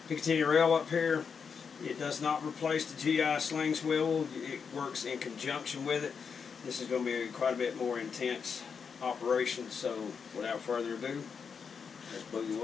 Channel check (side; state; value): right; quieter; 6.1 dB